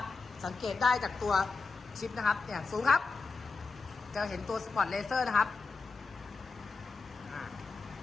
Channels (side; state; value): right; quieter; 4.3 dB